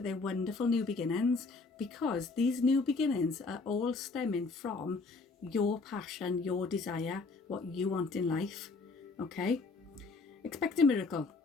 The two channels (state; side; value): quieter; right; 3.9 dB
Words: they're wonderful new beginnings, because these new beginnings are all stemming from your passion, your desire, what you want in life. Okay? Expect a miracle.